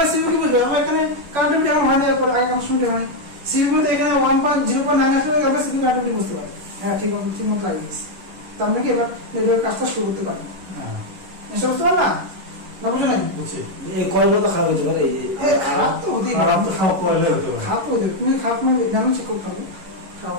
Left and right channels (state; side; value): late; left; 10 ms